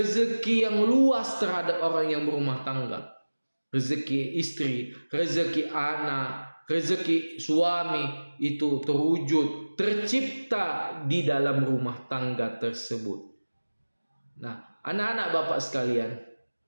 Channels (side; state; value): both; inverted; correlation -1.00